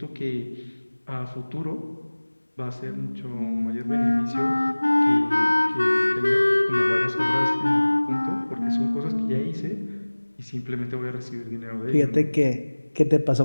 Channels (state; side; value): inverted; both; correlation -1.00